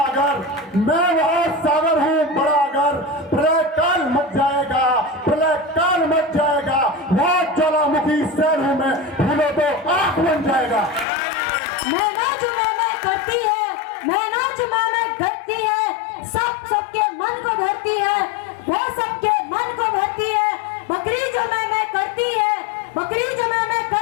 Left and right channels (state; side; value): drops out; right; at 11.1 s